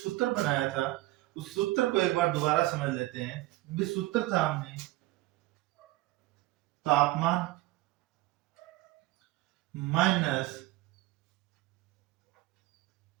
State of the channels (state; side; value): quieter; left; 18.3 dB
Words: बनाया था उस सूत्र को एक बार दोबारा समझ लेते हैं। ये सूत्र था हमने तापमान माइनस